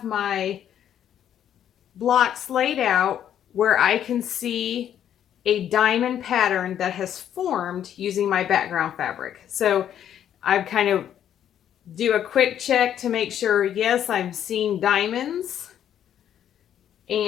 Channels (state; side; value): quieter; right; 10.1 dB